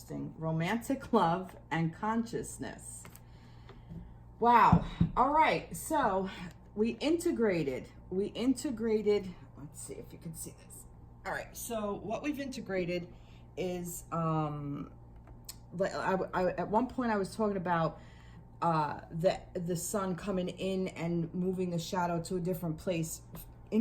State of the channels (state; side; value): identical; both; correlation 1.00